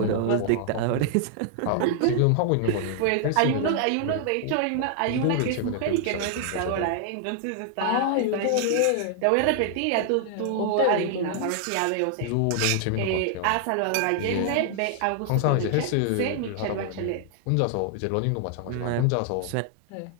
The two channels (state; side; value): different; both; correlation 0.00